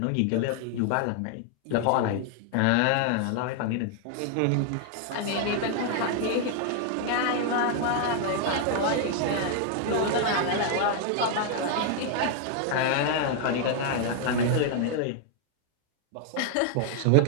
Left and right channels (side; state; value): both; different; correlation 0.00